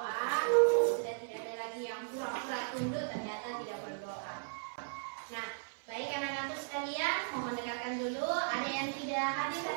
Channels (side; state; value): left; silent; 54 dB below the other